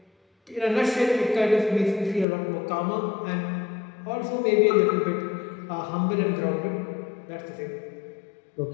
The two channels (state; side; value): drops out; right; at 2.2 s